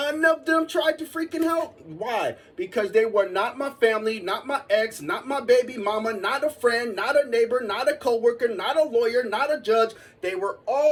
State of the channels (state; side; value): identical; both; correlation 1.00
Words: of them tried to freaking help? Why? Because they were not my family, not my ex, not my baby mama, not a friend, not a neighbor, not a coworker, not a lawyer, not a judge. They were